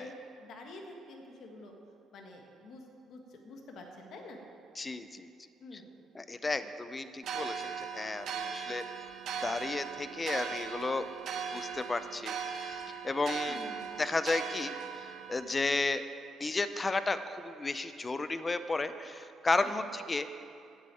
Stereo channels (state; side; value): normal; both; correlation 0.87